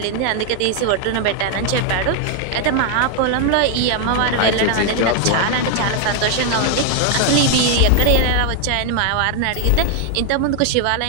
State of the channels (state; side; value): different; both; correlation 0.00